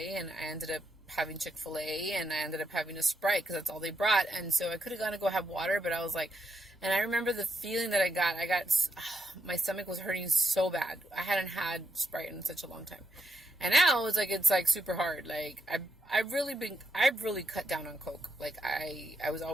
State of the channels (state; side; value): normal; both; correlation 0.81